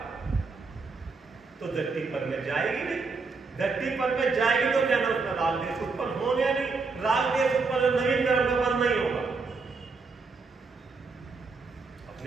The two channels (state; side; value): quieter; left; 4.3 dB